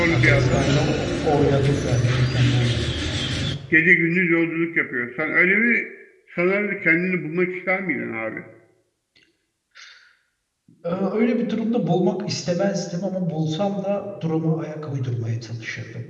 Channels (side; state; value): both; identical; correlation 1.00